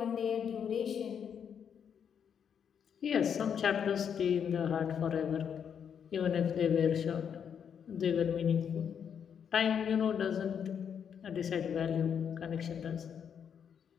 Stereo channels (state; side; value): quieter; right; 7.8 dB